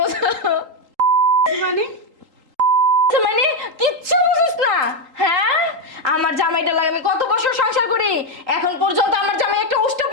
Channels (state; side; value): late; left; 3.8 ms